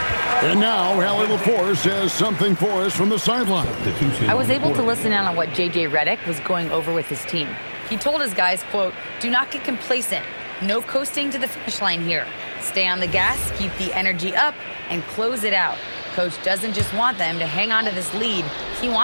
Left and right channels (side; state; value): both; inverted; correlation -1.00